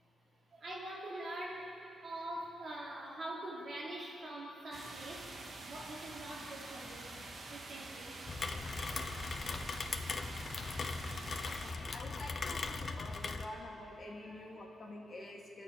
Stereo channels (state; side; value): normal; both; correlation 0.85